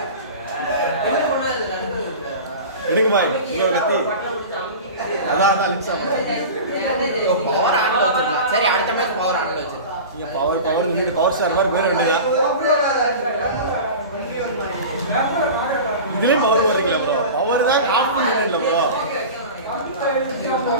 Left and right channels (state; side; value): inverted; both; correlation -0.33